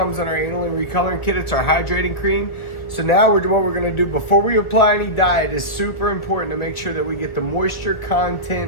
in our aniline recoloring kit. It's our hydrating cream. So now what we're gonna do before we apply any dye, it is super important to make sure that we get the moisture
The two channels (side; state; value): right; late; 1.2 ms